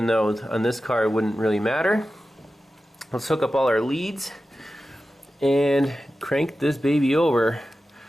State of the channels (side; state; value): both; normal; correlation 0.93